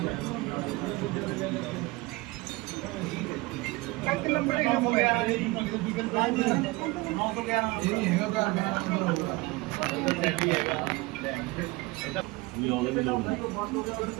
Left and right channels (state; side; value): quieter; left; 22.7 dB